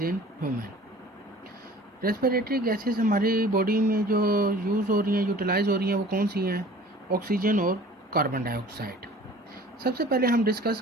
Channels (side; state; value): both; normal; correlation 0.47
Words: in human. Respiratory gases हमारी बॉडी में जो यूज़ हो रही हैं, यूटिलाइज हो रही हैं, वो कौन सी हैं? ऑक्सीजन और कार्बन डाइऑक्साइड। सबसे पहले हम डिस्कस